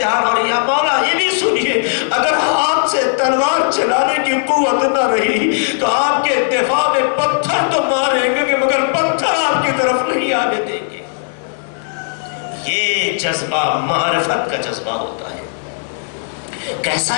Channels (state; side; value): silent; right; digital silence